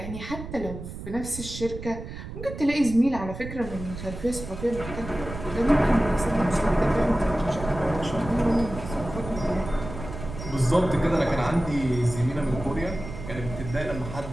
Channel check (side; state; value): right; noise; rumble, 10 dB below the sound